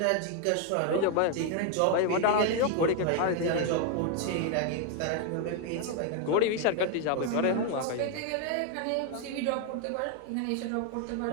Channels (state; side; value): different; both; correlation 0.00